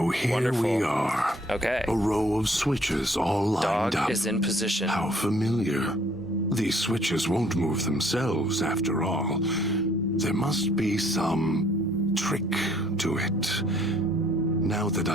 here Wonderful. we are. Okay. A row of switches all lined Dog up. is in position. How familiar. These switches won't move themselves after all. There must be some trick to it. Now that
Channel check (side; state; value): both; normal; correlation 0.61